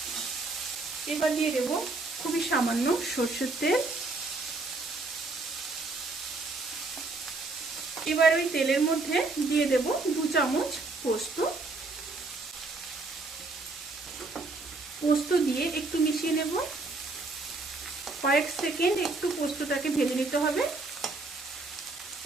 এবার দিয়ে দেব খুবই সামান্য সরষের তেল। এবার ওই তেলের মধ্যে দিয়ে দেব 2 চামচ পোস্ত। পোস্ত দিয়ে একটু মিশিয়ে নেব। কয়েক সেকেন্ড একটু পোস্তটাকে ভেজে নিতে হবে।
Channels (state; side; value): quieter; left; 3.4 dB